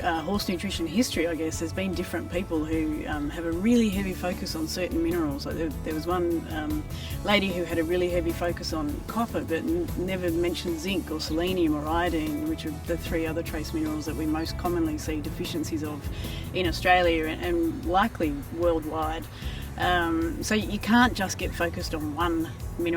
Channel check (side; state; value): both; identical; correlation 1.00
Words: nutrition history, I guess, there's been different people who have a really heavy focus on certain minerals. Like there was one lady who had a really heavy focus on copper, but never mentioned zinc or selenium or iodine, which are the 3 other trace minerals that we most commonly see deficiencies of in Australia and likely worldwide. So you can't just get focused on one